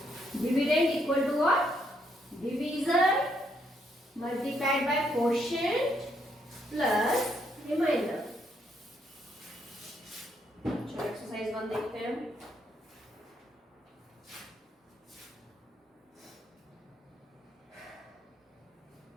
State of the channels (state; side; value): normal; both; correlation 0.74